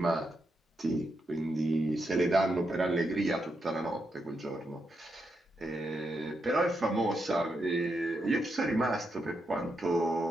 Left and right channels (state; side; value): normal; both; correlation 0.83